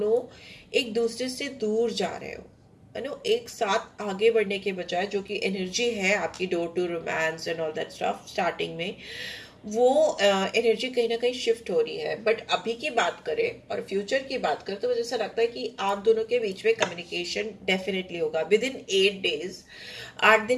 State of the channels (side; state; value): both; identical; correlation 1.00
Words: एक दूसरे से दूर जा रहे हो। एक साथ आगे बढ़ने के बजाय जो कि एनर्जी है आपकी door to romance and all that stuff starting में, वो एनर्जी कहीं ना कहीं शिफ्ट हो रही है। बट अभी की बात करें और फ्यूचर की बात करें तो मुझे ऐसा लगता है कि आप दोनों के बीच में कम्युनिकेशन डेफिनेटली होगा विद इन 8 डेज। 8